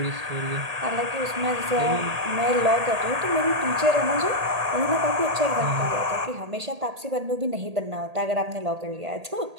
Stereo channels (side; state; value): left; late; 1.8 ms